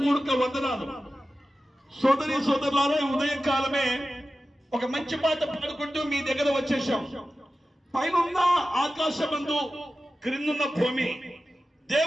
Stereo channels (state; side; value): normal; both; correlation 0.94